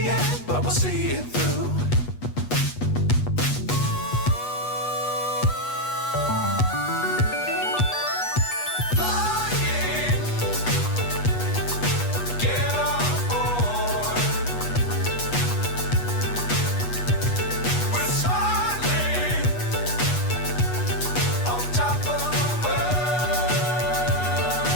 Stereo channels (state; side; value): late; right; 8.2 ms